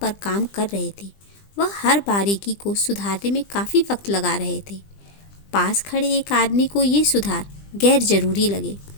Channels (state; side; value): late; right; 20 ms